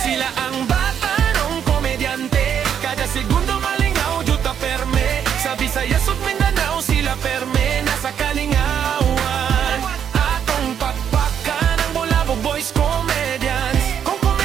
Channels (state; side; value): quieter; left; 8.5 dB